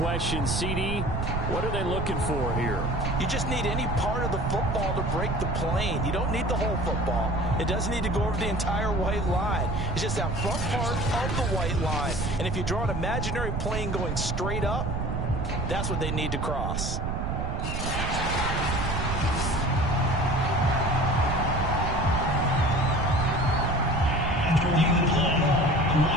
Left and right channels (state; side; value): noise; right; rumble, 1 dB below the sound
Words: CD, what are they looking for here? You just need any part of the football to break the plane. You don't need the whole football. It doesn't need to go over the entire white line. It's just that front part of the white line. And if you draw an imaginary plane going straight up, that's what they need to cross. After reviewing the play, the